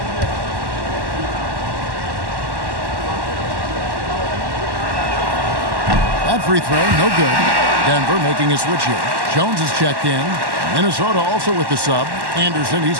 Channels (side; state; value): left; late; 1.1 ms